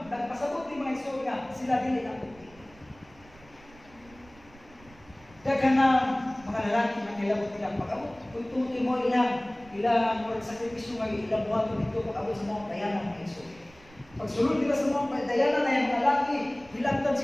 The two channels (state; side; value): noise; right; rumble, 25 dB below the sound